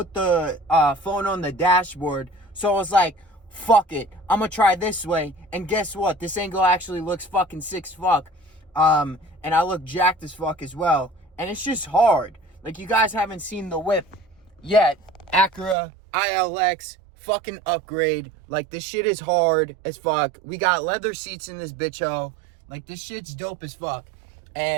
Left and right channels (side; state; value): left; drops out; at 15.8 s